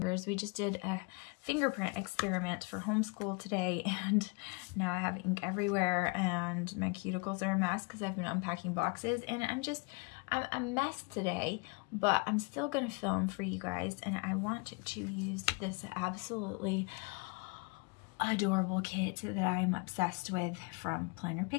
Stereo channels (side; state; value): right; quieter; 30.7 dB